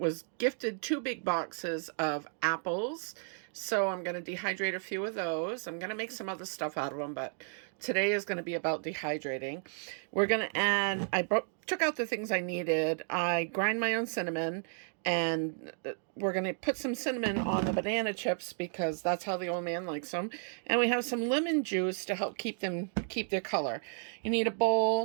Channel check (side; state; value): left; silent; 56 dB below the other